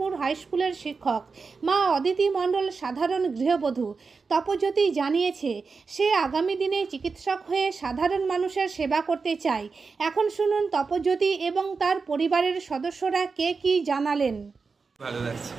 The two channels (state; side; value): quieter; left; 4.7 dB